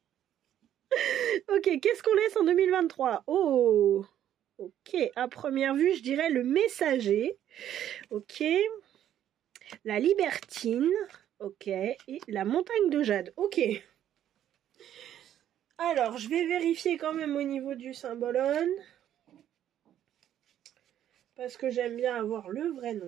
Ok, qu'est-ce qu'on laisse en 2023? Oh, ok, à première vue, je dirais le messager. Ok. La libertine. Ok. Et la montagne de jade. Ok. Alors, je vais vérifier quand même au niveau du symbolone. Parce que j'aime bien avoir le vrai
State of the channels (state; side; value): quieter; left; 11.0 dB